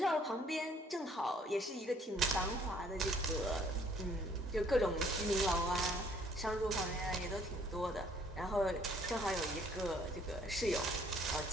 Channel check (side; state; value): both; normal; correlation 0.61